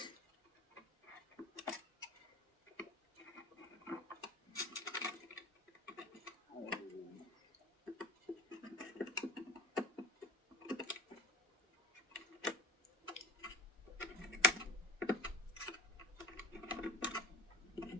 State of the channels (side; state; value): both; normal; correlation 0.44